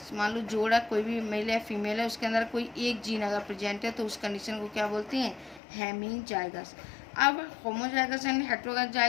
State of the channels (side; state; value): right; drops out; at 5.6 s